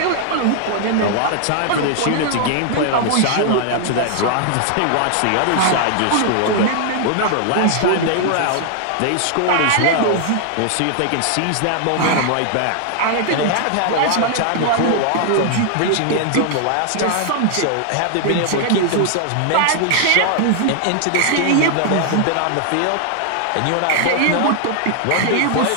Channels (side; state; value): both; different; correlation 0.00